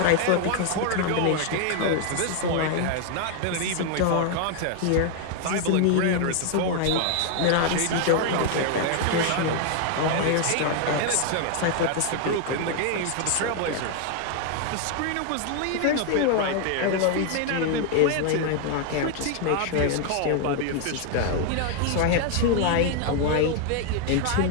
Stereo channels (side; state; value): both; different; correlation 0.00